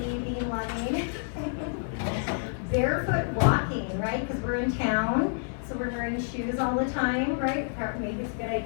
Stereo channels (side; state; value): right; silent; 57 dB below the other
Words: being loving. Barefoot walking, right? Because we're in town, so we're wearing shoes all the time, right? Maybe it's a good